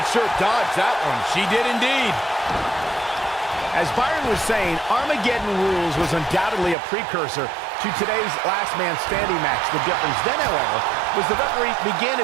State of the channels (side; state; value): left; drops out; at 6.8 s